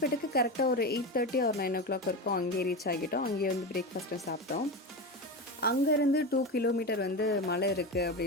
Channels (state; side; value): normal; both; correlation 0.21